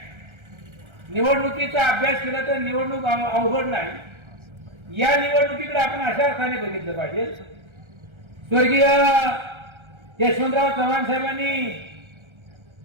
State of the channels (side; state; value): left; late; 1.3 ms